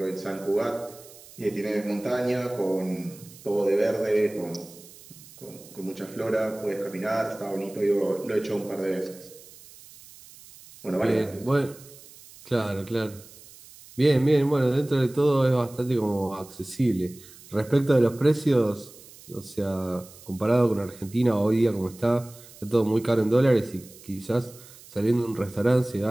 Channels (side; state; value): right; noise; hiss, 21 dB below the sound